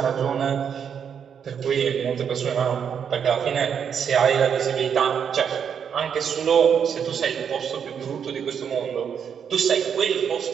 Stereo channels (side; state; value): left; quieter; 7.6 dB